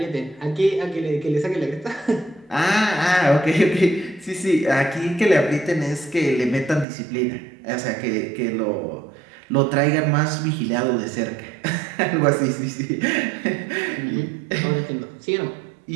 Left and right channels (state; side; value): drops out; left; at 6.9 s